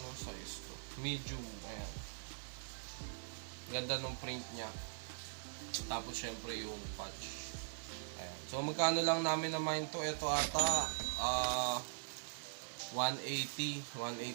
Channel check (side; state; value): left; silent; digital silence